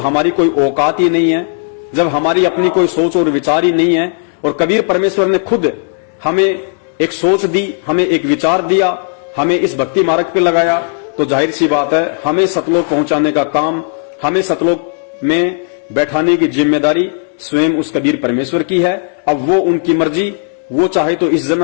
कोई औकात ही नहीं है, जब हमारी अपनी कोई सोच और विचार ही नहीं है, और कबीर परमेश्वर ने खुद हमें एक सोच दी, हमें एक विचार दिया, हमें इस भक्ति मार्ग पे लगाया, तो जाहिर सी बात है हमें सतलोक पहुंचाने का काम, हमें सतलोक में बैठाने की जिम्मेदारी स्वयं उस कबीर परमेश्वर की है। अब वो उनकी मर्जी, वो चाहे तो इस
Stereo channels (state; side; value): silent; right; digital silence